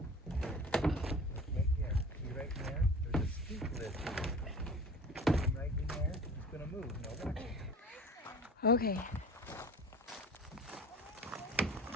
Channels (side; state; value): both; normal; correlation 0.41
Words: Look right there. See right there? There's a skink lizard. Come right in there. It's gonna move. Now watch it. Okay.